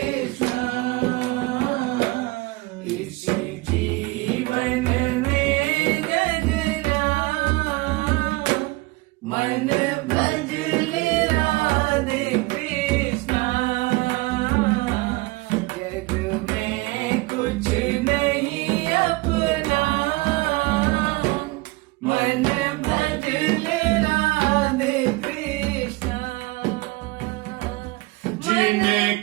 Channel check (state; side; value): quieter; left; 23.0 dB